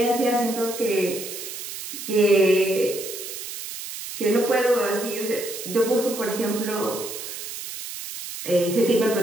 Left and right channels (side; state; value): right; noise; hiss, 9 dB below the sound